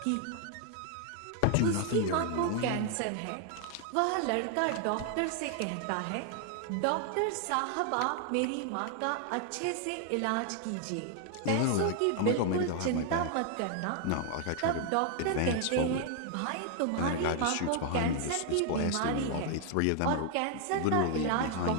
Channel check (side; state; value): both; different; correlation 0.00